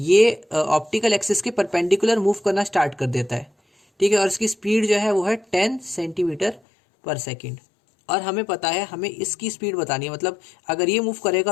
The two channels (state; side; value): drops out; right; at 6.6 s